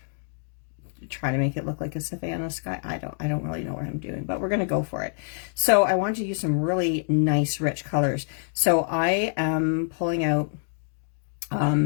try to make it look like a Savannah sky. I don't really know what I'm doing, but we're going to go for it. So I want to use some really nice rich colors. So I am pulling out,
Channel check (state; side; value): silent; right; digital silence